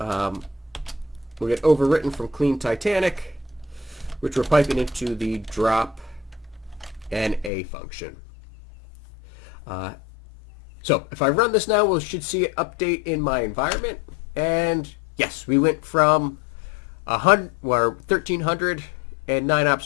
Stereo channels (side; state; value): right; drops out; at 7.5 s